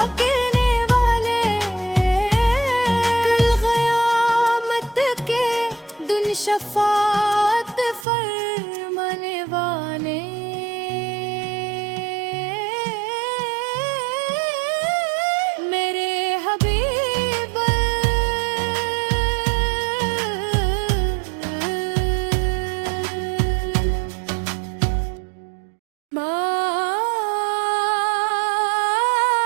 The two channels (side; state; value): left; drops out; at 8.1 s